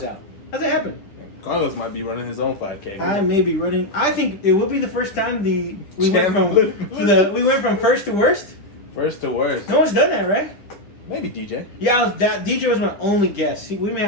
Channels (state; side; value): late; right; 10 ms